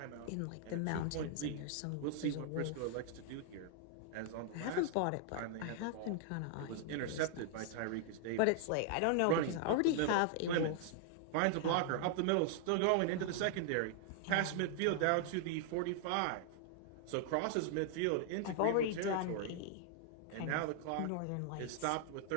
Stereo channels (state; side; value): different; both; correlation -0.01